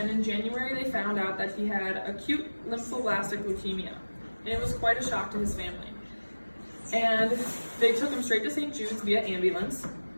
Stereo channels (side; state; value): both; inverted; correlation -1.00